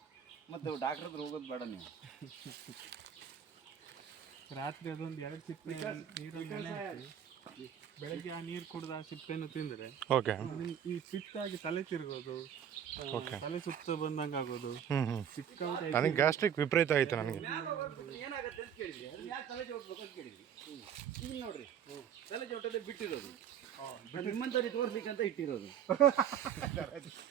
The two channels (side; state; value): left; quieter; 8.8 dB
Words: ಮತ್ತೆ ಡಾಕ್ಟರ್ ಹತ್ರ ಹೋಗೋದು ಬೇಡ ನೀವು. ರಾತ್ರಿ ಅದೊಂದು 2 ಸಿಪ್ಪೆ ನೀರಲ್ಲಿ ನೆನೆ ಹಾಕಿ ಬೆಳಗ್ಗೆ ಆ ನೀರು ಕುಡ್ದು ಆ ಸಿಪ್ಪೆಯನ್ನು ತಿಂದರೆ ಓಕೆ, ಈ ಪಿತ್ತಾಗಿ ತಲೆ ತಿರುಗೋದು, ತಲೆ ಸುತ್ತ ಬಂದಂಗೆ ಆಗೋದು. ಸಿಕ್ಕಾಪಟ್ಟೆ ನನಗೆ ಗ್ಯಾಸ್ಟ್ರಿಕ್ ವಿಪರೀತ ಆಯ್ತು. ನನಗೆ ಏನಾಗುತ್ತೆ ಅಂತ ಕೇಳಿದ್ರಿ, ಯಾಕೆ ತಲೆ ಚೌಟ್ಬೇಕು ಅಂತ ಕೇಳಿದ್ರಿ. ಈಗ ನೋಡ್ರಿ, ತಲೆ ಚೌಟಲ್ಲೇ ಬಿಟ್ಟಿರೋದು, ನಿಮ್ಮಂತವ್ರಿಗೆ ತೋರಿಸ್ಲಿಕ್ಕೆ ಅಂತ ಇಟ್ಟಿರೋದು.